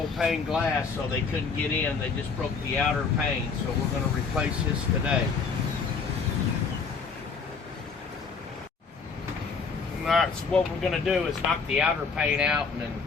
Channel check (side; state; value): right; quieter; 5.1 dB